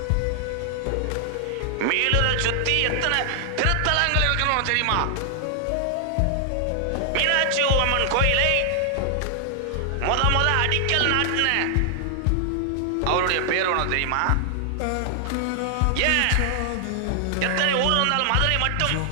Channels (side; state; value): both; different; correlation 0.00